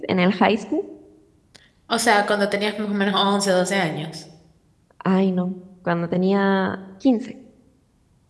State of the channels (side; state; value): both; identical; correlation 1.00